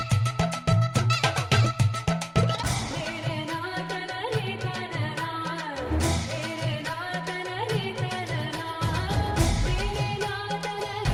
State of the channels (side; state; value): both; identical; correlation 1.00